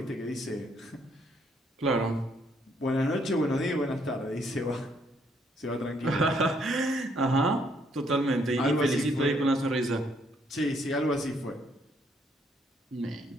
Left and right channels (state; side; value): normal; both; correlation 0.70